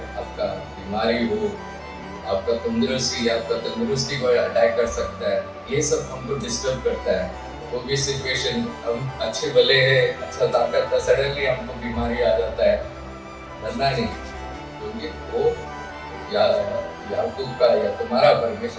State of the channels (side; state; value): both; identical; correlation 1.00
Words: बीमारी हो, आपका तंदुरुस्ती को अटैक कर सकता है, ये सब हमको डिस्टर्ब करता है। वो भी सिचुएशन हम अच्छे भले है, अच्छा ताकत था, सडनली हमको बीमारी आ जाता है, डरना नहीं, क्योंकि वो याकूब का या तुम्हारा